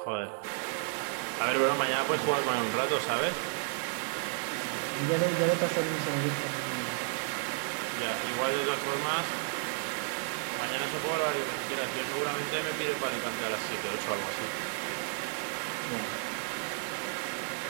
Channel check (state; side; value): silent; left; 56 dB below the other